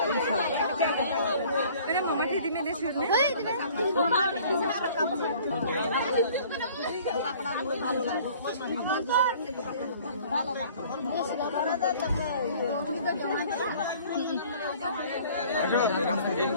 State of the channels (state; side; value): inverted; both; correlation -0.51